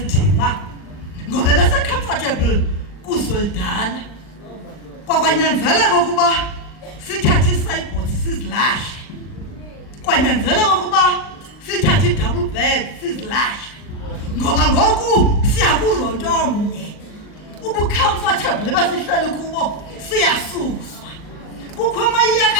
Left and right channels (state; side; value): late; right; 39 ms